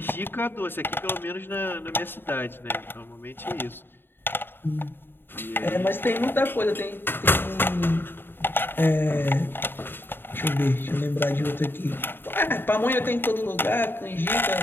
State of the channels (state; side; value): late; right; 0.10 ms